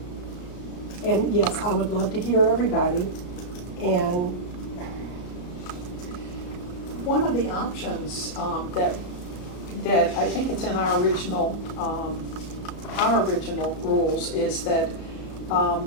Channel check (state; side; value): late; right; 34 ms